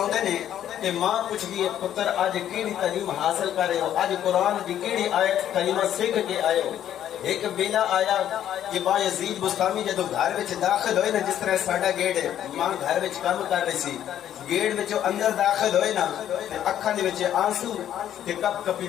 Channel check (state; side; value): quieter; right; 10.8 dB